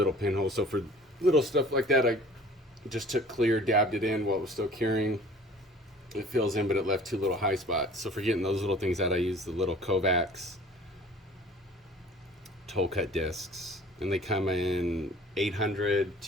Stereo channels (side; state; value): both; normal; correlation 0.48